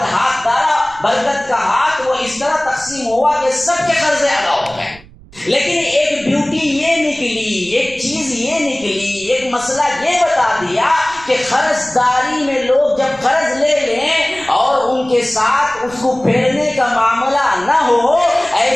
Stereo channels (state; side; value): noise; right; rumble, 23 dB below the sound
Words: ہاتھ ڈالا، برکت کا ہاتھ وہ اس طرح تقسیم ہوا کہ سب کے قرضے ادا ہو گئے۔ لیکن ایک بیوٹی یہ نکلی، ایک چیز یہ نکلی، ایک مسئلہ یہ بتا دیا کہ قرض داری میں لوگ جب قرض لے لیں اور ان کے ساتھ اس کو پھیرنے کا معاملہ نہ ہو،